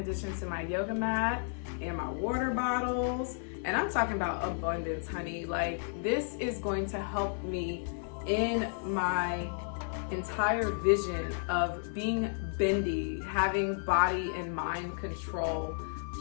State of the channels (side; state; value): right; silent; 55 dB below the other